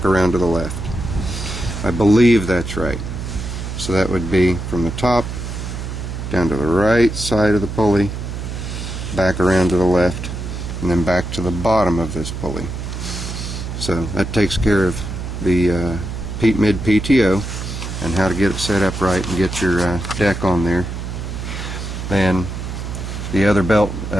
around to the left. I believe that's right. So that would be from the top down to the right side of the pulley, back around to the left, and then back to the bottom of this pulley. So that takes care of the mid PTO and how to get it set up right and get your deck on there. Then the other belt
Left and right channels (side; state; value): right; noise; hum, 6 dB below the sound